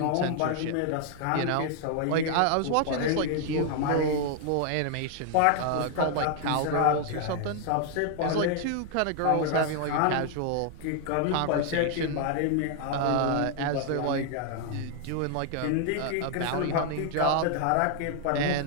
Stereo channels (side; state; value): both; different; correlation 0.00